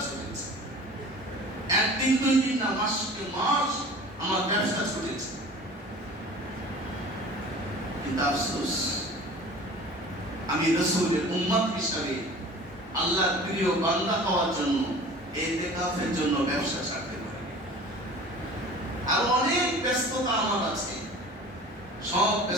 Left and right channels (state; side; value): normal; both; correlation 0.42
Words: চলেছে, একদিন দুই দিন না, মাসকে মাস আমার ব্যবসা ছুটেছে। কিন্তু আফসোস, আমি রাসূলের উম্মত হিসাবে আল্লাহর প্রিয় বান্দা হওয়ার জন্য, ইতিকাফের জন্য ব্যবসা ছাড়তে পারি। আর অনেক ব্যস্ততা আমার আছে, সব